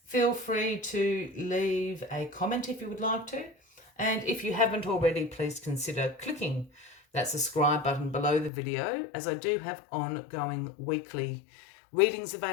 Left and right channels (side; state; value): right; drops out; at 8.5 s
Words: Feel free to leave a comment if you would like to. And if you haven't already, please consider clicking that subscribe button below the video, as I do have ongoing weekly readings